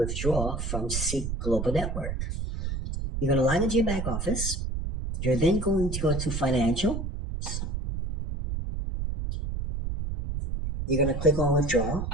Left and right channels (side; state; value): right; noise; rumble, 3 dB below the sound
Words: from Seek Global Network. You're going to log into your back office. You're then going to go to Financial. You're going to click on Withdrawal.